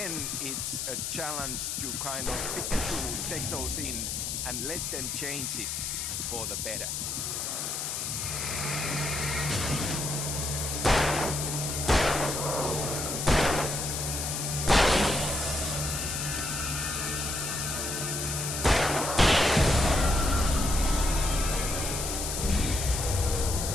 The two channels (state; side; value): noise; left; hiss, 3 dB below the sound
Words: it's a challenge to kind of pick and choose, take those in, and let them change it for the better.